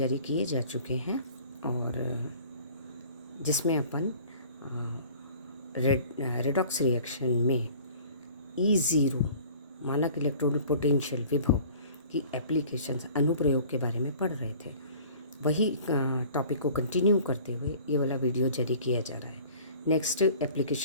जारी किए जा चुके हैं और जिसमें अपन रेडॉक्स रिएक्शन में E0 मानक इलेक्ट्रोड पोटेंशियल विभव की एप्लीकेशंस अनुप्रयोग के बारे में पढ़ रहे थे। वही टॉपिक को कंटिन्यू करते हुए ये वाला वीडियो जारी किया जा रहा है। नेक्स्ट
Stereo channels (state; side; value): inverted; both; correlation -0.48